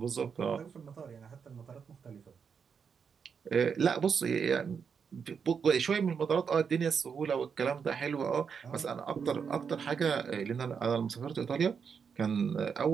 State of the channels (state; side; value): quieter; left; 6.4 dB